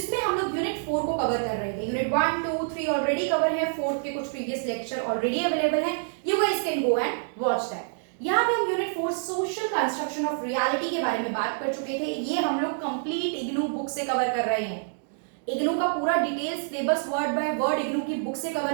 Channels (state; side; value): silent; left; digital silence